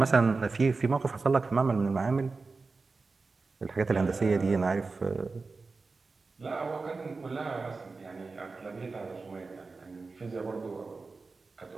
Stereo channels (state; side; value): quieter; left; 4.1 dB